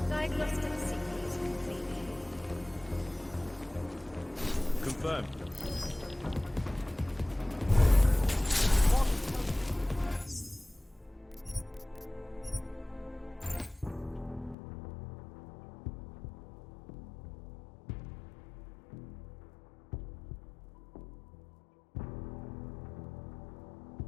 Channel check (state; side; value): drops out; right; at 14.6 s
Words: Diagnostic sequence complete. Confirmed.